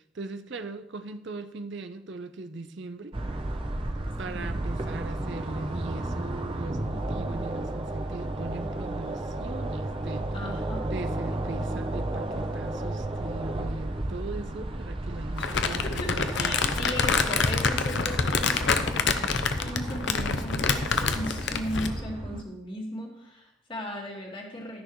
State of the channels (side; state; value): both; normal; correlation 0.59